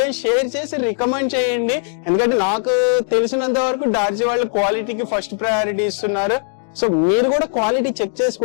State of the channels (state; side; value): silent; right; digital silence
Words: షేర్ చేసి రికమెండ్ చేయండి, ఎందుకంటే నాకు తెలిసినంత వరకు డార్జీ వాళ్ళు క్వాలిటీకి ఫస్ట్ ప్రయారిటీ ఇస్తున్నారు. సో మీరు కూడా క్వాలిటీ చెక్